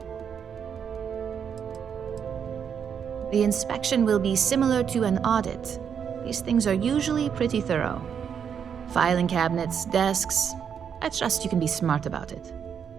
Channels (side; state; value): left; quieter; 7.6 dB